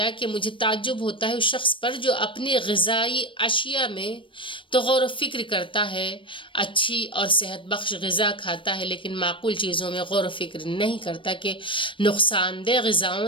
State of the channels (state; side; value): late; right; 0.25 ms